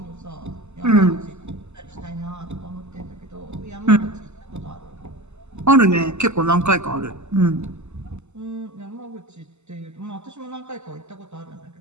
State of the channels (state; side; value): late; left; 0.83 ms